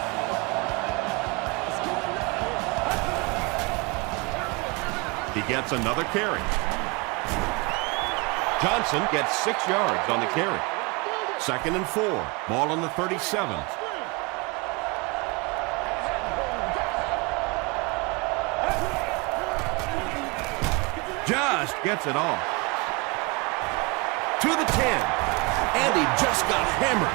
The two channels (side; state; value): left; quieter; 28.7 dB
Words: He gets another carry. Johnson gets 6 yards on the carry. 2nd and 4. Ball on the 37. Just gets it off. To the 10. And he just got hammered.